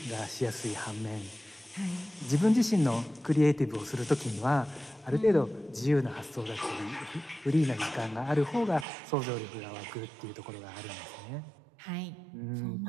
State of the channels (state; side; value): drops out; left; at 8.8 s